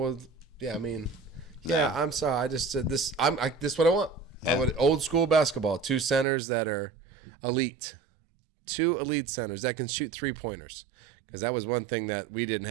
I'm sorry. I just said this. This is what I want. Yeah. I would old school basketball. 2 centers that are elite. 2 elite centers that can shoot 3-pointers. Because that was one thing that we didn't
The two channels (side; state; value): left; drops out; at 6.2 s